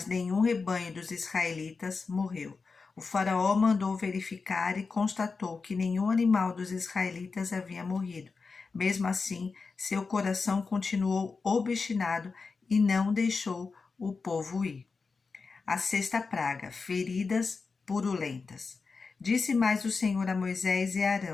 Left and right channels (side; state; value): right; quieter; 4.6 dB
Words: nenhum rebanho dos israelitas morreu. O faraó mandou verificar e constatou que nenhum animal dos israelitas havia morrido. Mesmo assim, seu coração continuou obstinado e não deixou o povo ir. A sexta praga, feridas purulentas. Disse mais o Senhor a Moisés e a